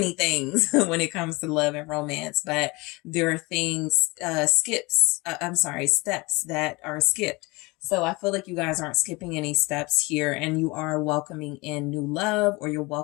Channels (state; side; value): quieter; right; 24.6 dB